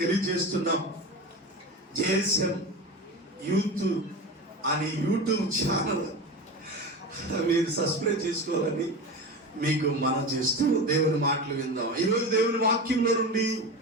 తెలియజేస్తున్నాం. జేఎస్ఎం యూత్ అనే యూట్యూబ్ ఛానల్ మీరు సబ్స్క్రైబ్ చేసుకోవాలని మీకు మనం చేస్తూ దేవుని మాటలు విందాం. ఈరోజు దేవుని వాక్యంలో నుండి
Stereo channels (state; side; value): normal; both; correlation 0.26